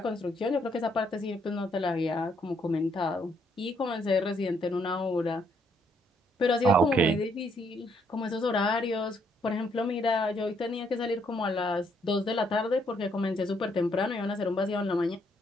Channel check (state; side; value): normal; both; correlation 0.71